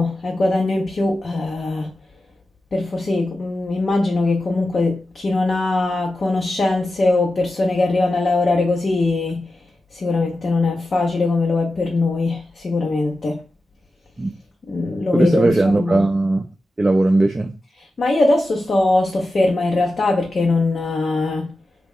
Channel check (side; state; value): both; normal; correlation 0.92